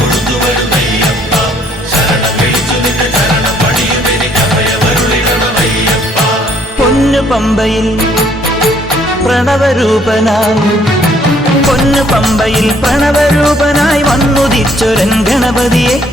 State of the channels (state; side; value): normal; both; correlation 0.64